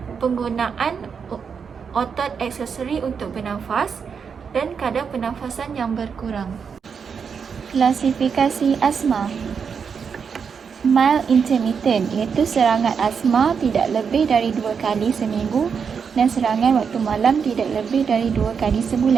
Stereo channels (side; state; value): left; quieter; 6.3 dB